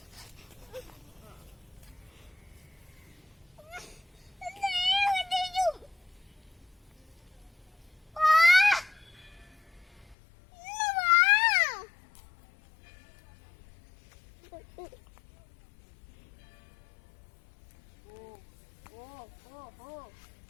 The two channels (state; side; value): drops out; right; at 10.2 s